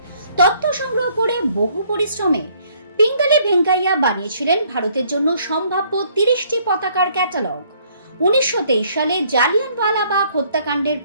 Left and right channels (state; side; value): inverted; both; correlation -0.63